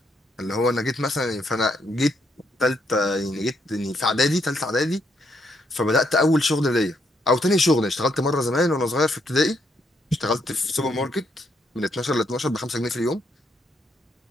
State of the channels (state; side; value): normal; both; correlation 0.75